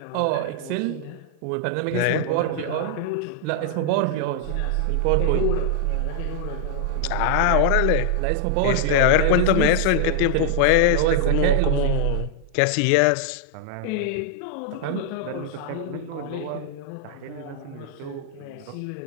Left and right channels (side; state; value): both; different; correlation -0.01